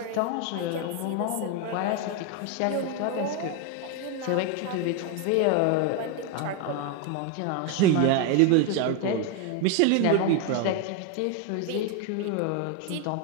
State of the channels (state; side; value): different; both; correlation 0.01